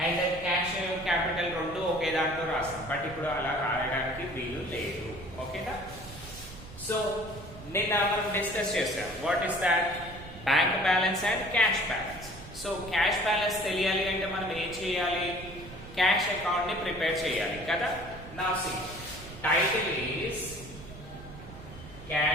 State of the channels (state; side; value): noise; right; rumble, 15 dB below the sound